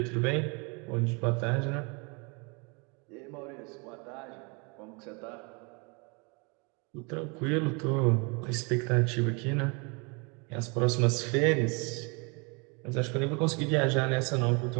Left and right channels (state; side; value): quieter; left; 31.5 dB